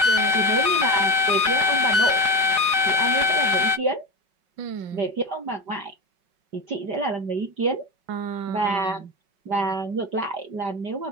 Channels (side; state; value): left; late; 5.3 ms